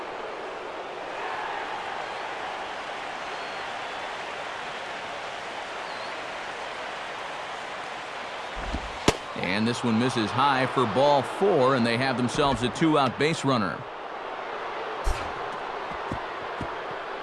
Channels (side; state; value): both; identical; correlation 1.00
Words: And this one misses high for ball 4, and they have themselves a 2-out base runner.